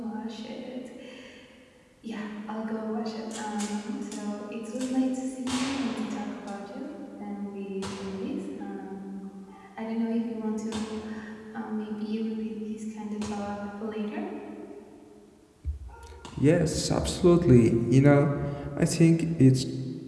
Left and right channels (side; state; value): both; identical; correlation 1.00